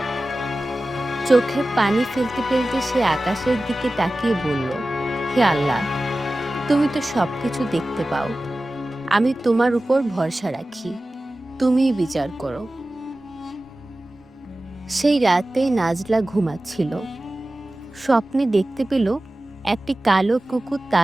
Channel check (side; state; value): both; normal; correlation 0.96